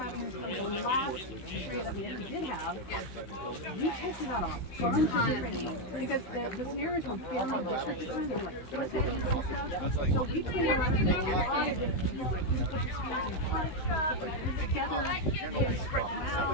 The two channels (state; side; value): late; right; 16 ms